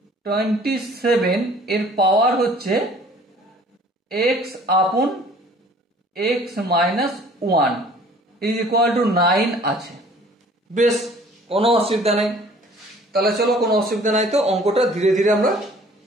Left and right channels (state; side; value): normal; both; correlation 0.52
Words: 27 এর পাওয়ার হচ্ছে x আপন x - 1 ইজ ইকুয়াল টু 9 আছে। বেশ, কোনো অসুবিধা নেই। তাহলে চলো, কোনো অসুবিধা নাই তো অঙ্কটা ধীরে ধীরে আমরা